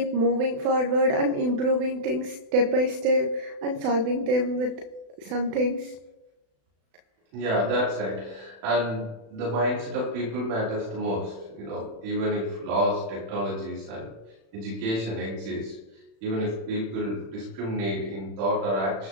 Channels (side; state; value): left; late; 36 ms